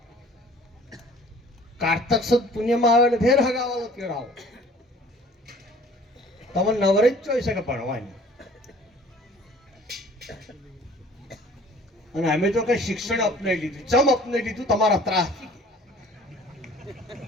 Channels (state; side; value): normal; both; correlation 0.50